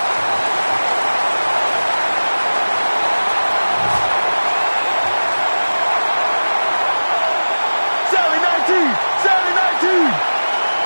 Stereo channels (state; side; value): inverted; both; correlation -1.00